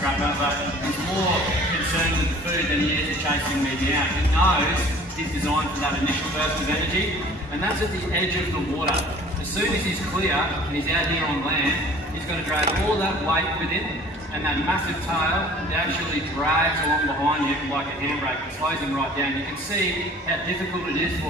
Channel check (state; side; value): normal; both; correlation 0.49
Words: but he's more concerned with the food than he is chasing me down. He knows he's designed for that initial burst of energy, and that's at the edge of the water. As soon as he's clear and he's out here on land, he's going to drag all that weight with him, and that massive tail actually drags along behind him like a handbrake and slows him right down. You can see how difficult it is